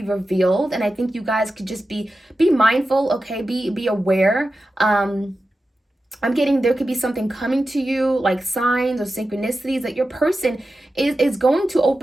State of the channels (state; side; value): normal; both; correlation 0.92